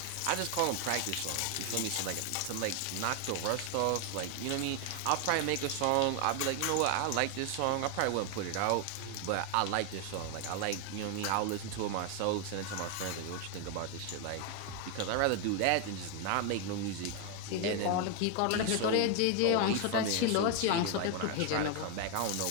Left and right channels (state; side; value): different; both; correlation 0.01